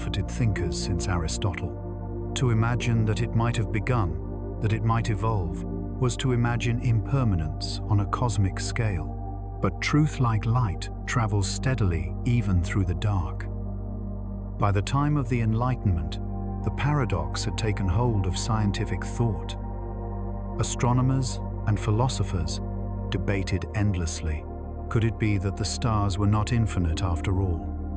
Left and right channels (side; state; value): both; identical; correlation 1.00